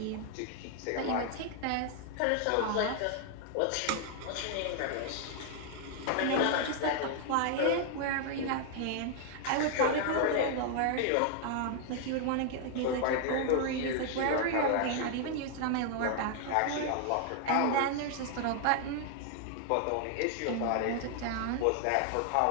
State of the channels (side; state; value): both; different; correlation 0.00